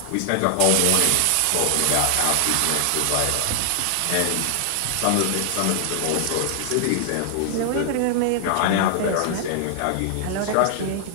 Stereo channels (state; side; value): different; both; correlation 0.00